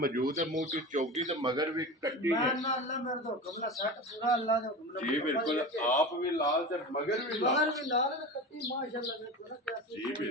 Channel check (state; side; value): normal; both; correlation 0.29